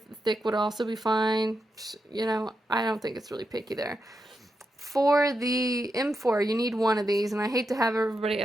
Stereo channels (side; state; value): both; normal; correlation 0.86